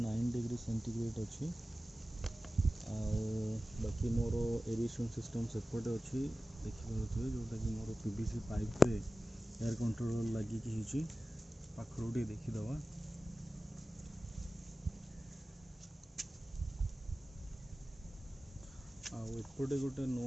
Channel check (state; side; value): normal; both; correlation 0.95